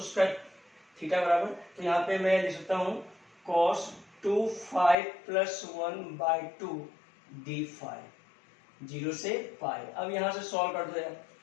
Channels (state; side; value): drops out; right; at 5.0 s